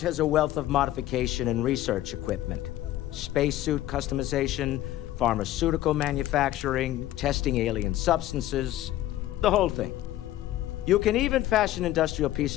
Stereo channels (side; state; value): right; quieter; 14.2 dB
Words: a wealth of modification and research equipment. Spacesuit customization, pharmaceutical manufacturing, testing alien substances, the whole thing. You can even fashion industrial